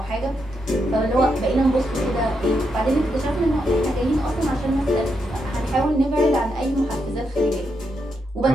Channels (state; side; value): normal; both; correlation 0.82